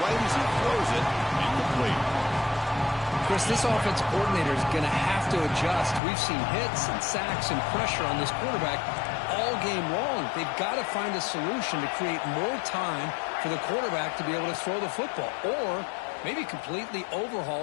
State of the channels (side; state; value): right; drops out; at 6.0 s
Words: right as he throws it. Incomplete. Chris, this offense coordinator is going to have to adjust. We've seen hits and sacks and pressure on this quarterback all game long. They've got to find a solution to create more time for the quarterback to be able to throw the football, or maybe completely